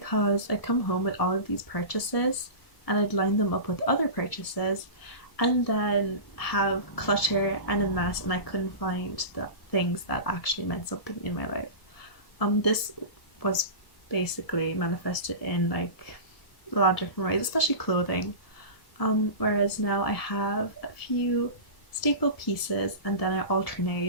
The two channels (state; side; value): late; right; 1.7 ms